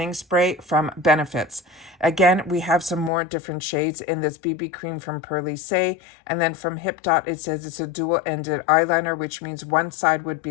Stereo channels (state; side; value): drops out; right; at 3.1 s